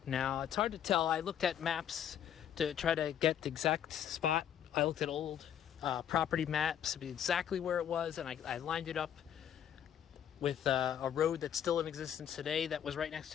Now it's hard to tell. I looked at maps to try to get the exact spot. I looked at old property maps to be exactly where it was, and I lined it up with a road that's still in existence today that was right next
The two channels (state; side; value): quieter; right; 9.6 dB